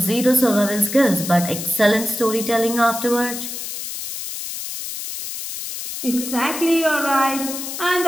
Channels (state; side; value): noise; left; hiss, 7 dB below the sound